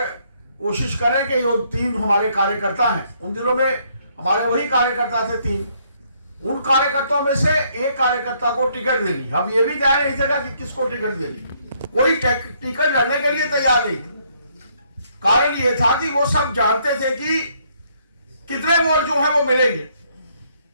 कोशिश करें कि ये 3 हमारे कार्यकर्ता हैं, उन दिनों में हमारे वही कार्यकर्ता थे 3, उन कार्यकर्ताओं में से एक कार्यकर्ता को टिकट देनी। हम ये भी तैयार नहीं थे कि किसको टिकट देनी, कोई टिकट लड़ने के लिए तैयार नहीं थे। कारण ये था कि वो सब जानते थे कि कितने वोट जो है वो मिलेंगे,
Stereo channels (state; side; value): inverted; both; correlation -0.69